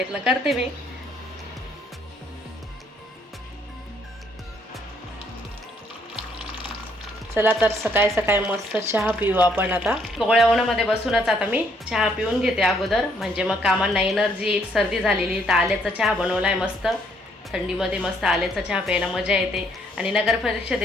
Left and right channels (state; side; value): normal; both; correlation 0.68